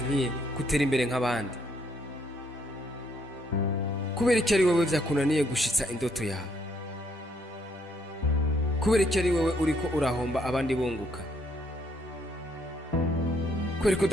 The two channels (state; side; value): normal; both; correlation 0.70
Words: gutera imbere nk'abandi? Kubera iki ari wewe vyakunaniye gushitsa indoto yawe? Kubera iki ari wewe uriko urahomba abandi bunguka? Kubera ko